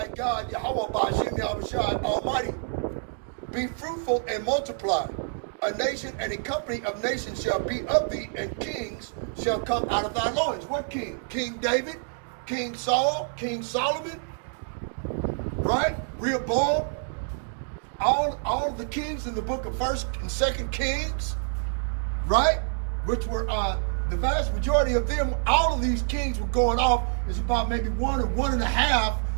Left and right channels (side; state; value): left; silent; digital silence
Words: God, Yahweh Ba'ashem Yahushua Almighty. Be fruitful and multiply. A nation and a company of nations shall be of thee, and kings shall come out of thy loins. What king? King David, King Saul, King Solomon, right? Rehoboam. All of the kings in the book of 1st and 2nd Kings, right? Which were the vast majority of them, all of these kings were going off. It's about maybe 1 or 1.5